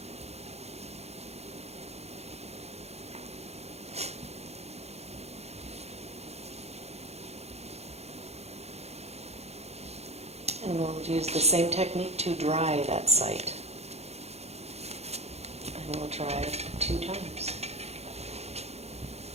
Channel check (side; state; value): left; late; 0.31 ms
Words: And we'll use the same technique to dry that site. And we'll dry 2 times.